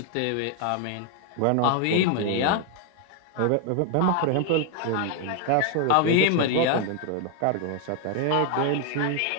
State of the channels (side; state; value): both; different; correlation 0.00